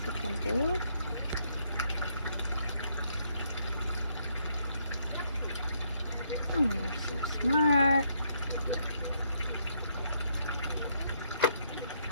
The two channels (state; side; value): inverted; both; correlation -0.73